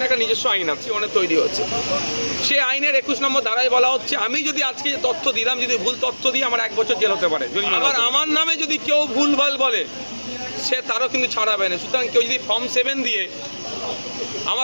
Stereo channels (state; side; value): inverted; both; correlation -1.00